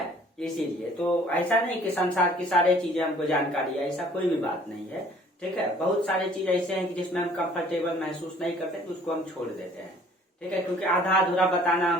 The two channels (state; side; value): normal; both; correlation 0.55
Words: इसीलिए तो ऐसा नहीं कि संसार की सारी चीजें हमको जानकारी है, ऐसा कोई भी बात नहीं है, ठीक है। बहुत सारी चीज ऐसे हैं कि जिसमें हम कंफर्टेबल महसूस नहीं करते, तो उसको हम छोड़ देते हैं, ठीक है, क्योंकि आधा अधूरा बताना